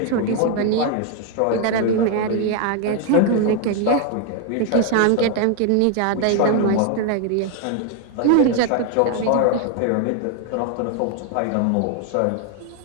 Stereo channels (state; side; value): different; both; correlation 0.01